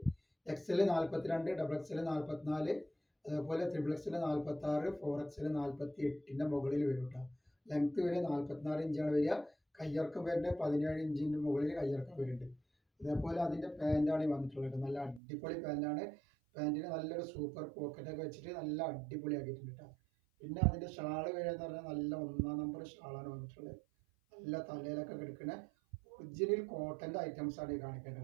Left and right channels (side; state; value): left; drops out; at 15.2 s